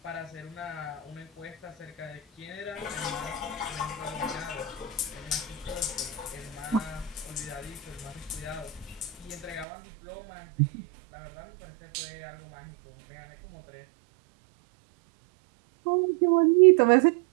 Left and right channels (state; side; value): drops out; left; at 9.7 s